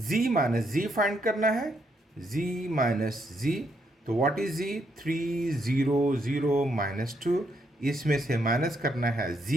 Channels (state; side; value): normal; both; correlation 0.75